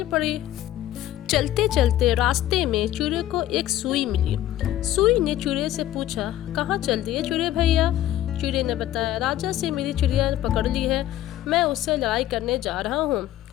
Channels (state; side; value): quieter; right; 13.2 dB